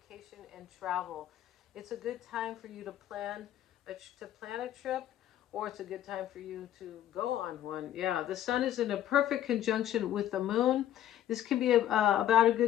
and travel. It's a good time for you to plan a trip, or it's a good time for you to go on one. Yeah, the sun is in a perfect conjunction with the moon. This can be about a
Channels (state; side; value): quieter; right; 11.7 dB